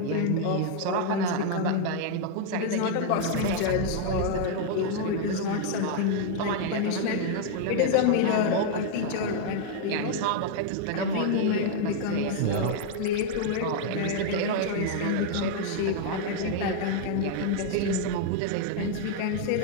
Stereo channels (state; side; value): different; both; correlation 0.00